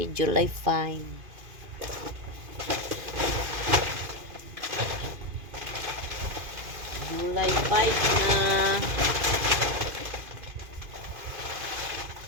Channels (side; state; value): left; late; 2.5 ms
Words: July 5. July 5 na.